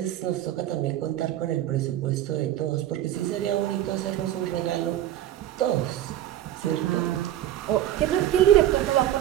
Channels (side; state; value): left; quieter; 12.8 dB